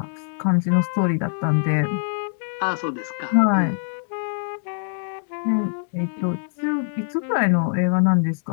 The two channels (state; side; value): silent; right; 63 dB below the other